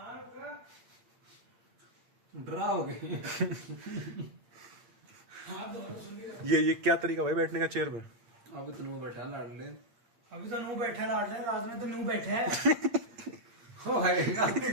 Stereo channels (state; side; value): late; left; 8.7 ms